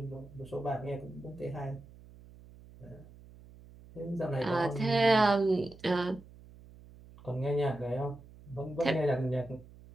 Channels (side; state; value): right; noise; hum, 21 dB below the sound